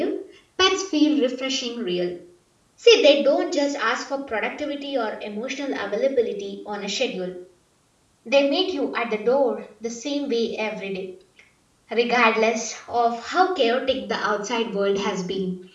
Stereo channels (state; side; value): identical; both; correlation 1.00